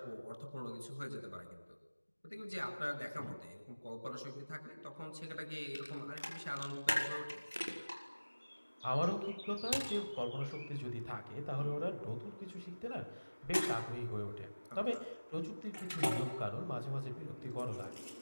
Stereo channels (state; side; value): inverted; both; correlation -1.00